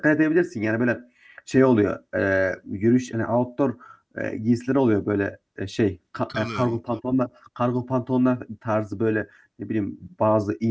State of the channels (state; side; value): identical; both; correlation 1.00